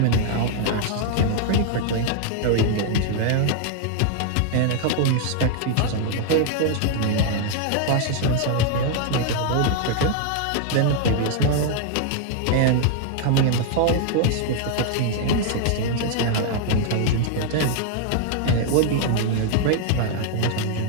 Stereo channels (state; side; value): different; both; correlation 0.00